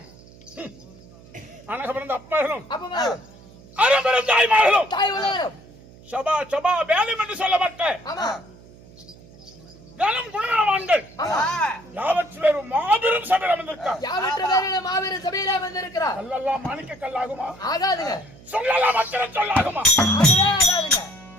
அனக பிறந்த அப்பர்களும் அறம்பிறந்த தாய்மார்களும் சபா சபா வேலும் என்று சொல்லப்பட்ட கனம் குணவான்கள் யாவற்றிலும் மாபெரும் சபையில் அமர்ந்திருக்கிறார் கல்லெல்லாம் மாணிக்க கல்லாகுமா ஆகாதுங்க சொல்லலாம் அச்சர சொல்லாகுமா ஆகாதுங்க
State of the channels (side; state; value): right; noise; hum, 22 dB below the sound